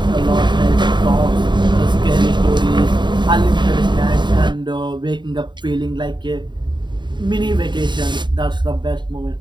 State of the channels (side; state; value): left; late; 0.22 ms